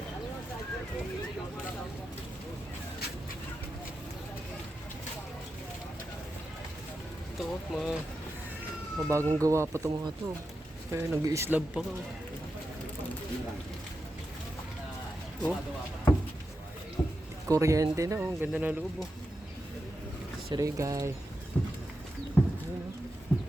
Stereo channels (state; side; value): normal; both; correlation 0.89